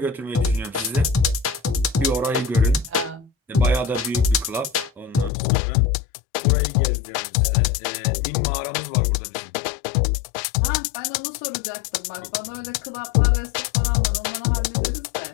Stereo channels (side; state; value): right; drops out; at 5.3 s